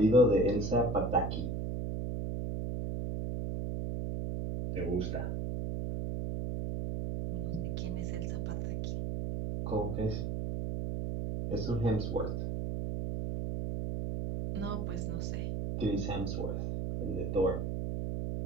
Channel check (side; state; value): right; noise; hum, 2 dB below the sound